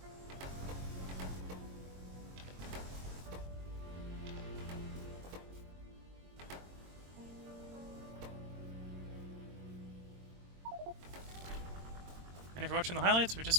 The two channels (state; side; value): late; left; 22 ms